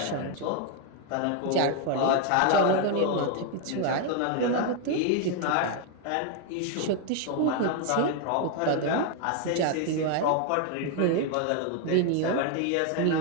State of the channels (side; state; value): both; different; correlation 0.01